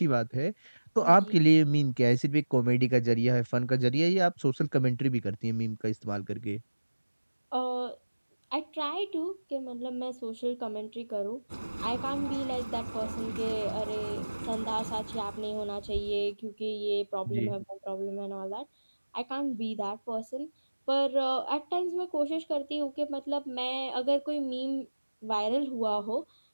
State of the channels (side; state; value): both; inverted; correlation -1.00